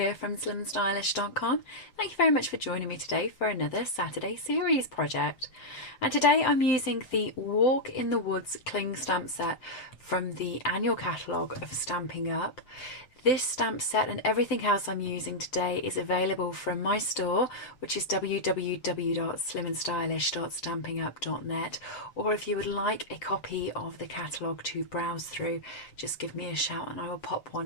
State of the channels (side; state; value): right; late; 7.8 ms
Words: from slimandstylish.com. Thank you very much for joining me today for another Saturday series project. And today I'm using the Walk in the Woods cling stamp set from the annual catalogue of Stampin' Up. This stamp set and everything else I'm using today is available from my store, which is www.slimandstylish.stampinup.net, or if you would like a copy of the catalogue to browse through, just give me a shout and I will pop